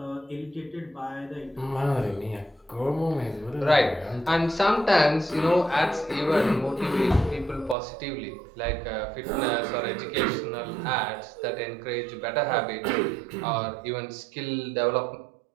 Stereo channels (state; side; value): drops out; left; at 7.8 s